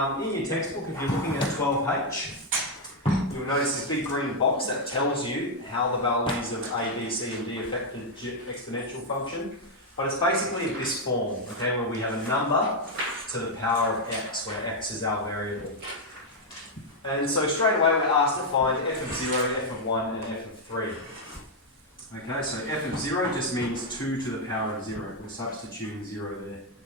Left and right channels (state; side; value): normal; both; correlation 0.00